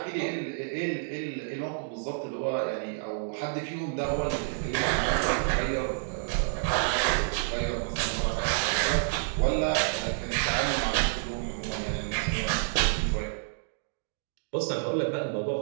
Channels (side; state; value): left; silent; digital silence